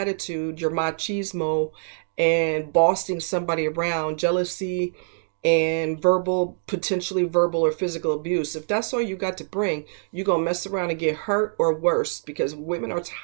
your machismo, and bossing somebody around, jealousy, and potentially verbal or physical abuse? If that's all you got to bring, you're going to mess around and get hurt or worse, because women are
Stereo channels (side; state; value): left; silent; digital silence